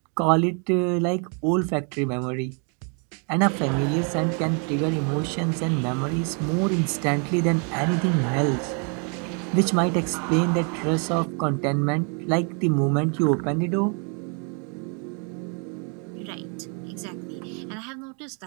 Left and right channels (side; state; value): left; quieter; 38.7 dB